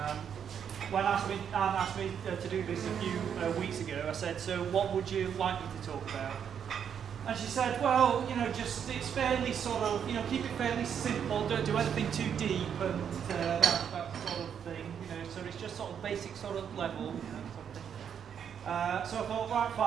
When Anne asked me to do this a few weeks ago, I said, so what would you like me to talk about? And she said, well, just it's fairly sort of, keep it fairly simple, don't do anything too deep and that sort of thing, so it's just sort of basic sort of level, something. So I thought, right,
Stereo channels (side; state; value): left; quieter; 8.1 dB